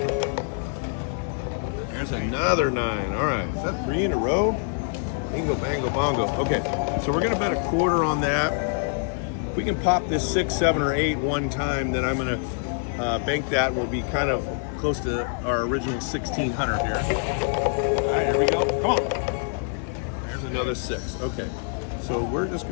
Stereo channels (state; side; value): silent; right; 61 dB below the other